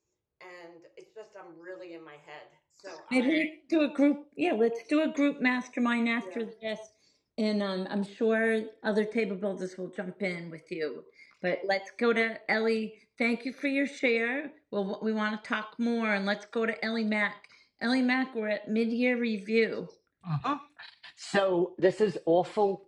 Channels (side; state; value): both; identical; correlation 1.00